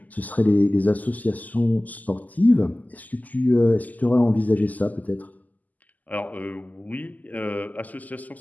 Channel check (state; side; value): late; right; 0.080 ms